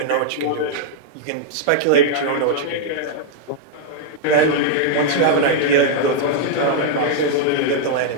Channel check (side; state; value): both; different; correlation -0.01